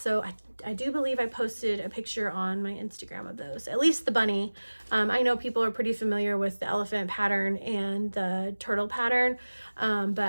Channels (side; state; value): both; inverted; correlation -1.00